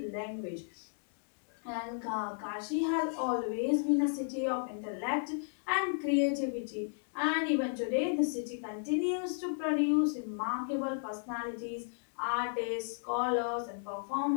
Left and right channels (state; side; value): silent; right; digital silence